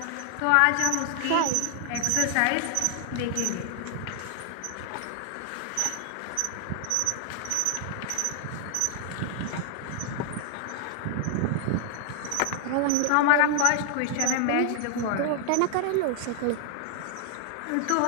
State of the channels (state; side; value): different; both; correlation 0.00